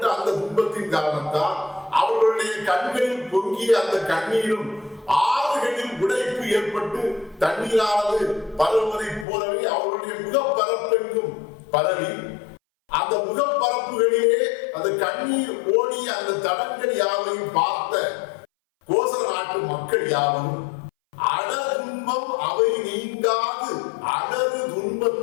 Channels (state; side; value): drops out; right; at 9.2 s